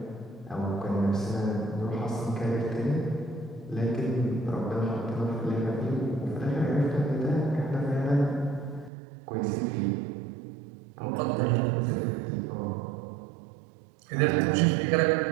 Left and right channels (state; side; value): drops out; left; at 8.9 s